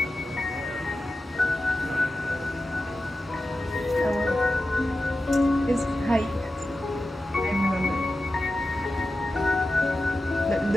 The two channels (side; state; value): both; normal; correlation 0.92